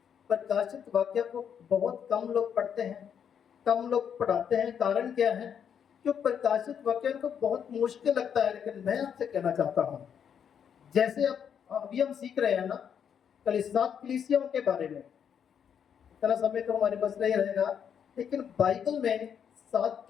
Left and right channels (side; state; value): right; quieter; 8.0 dB